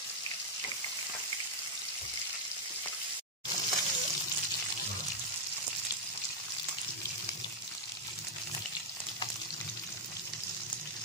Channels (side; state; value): both; normal; correlation -0.02